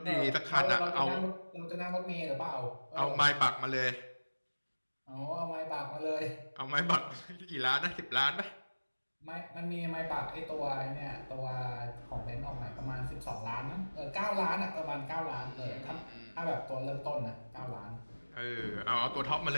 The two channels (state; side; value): inverted; both; correlation -1.00